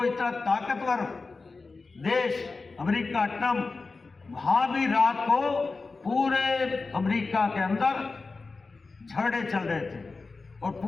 इतना ताकतवर देश अमेरिका ट्रंप, वहाँ भी रात को पूरे अमेरिका के अंदर झगड़े चल रहे थे और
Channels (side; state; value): right; quieter; 4.0 dB